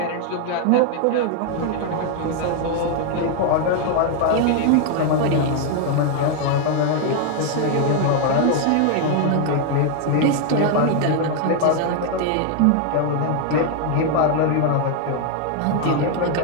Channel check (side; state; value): both; different; correlation 0.00